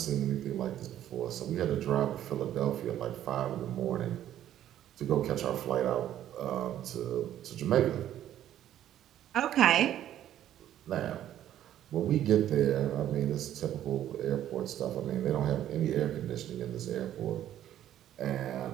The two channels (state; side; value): quieter; left; 11.7 dB